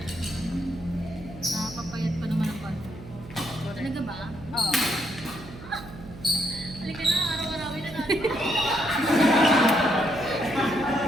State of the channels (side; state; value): right; noise; hum, 15 dB below the sound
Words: Nakapapayat pa naman ang palo. Talaga ba? Oo. Halika na, araw-arawin na natin.